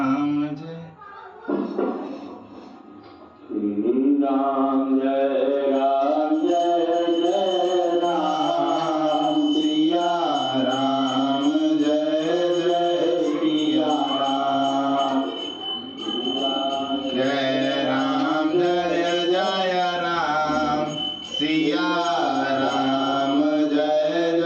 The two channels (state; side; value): identical; both; correlation 1.00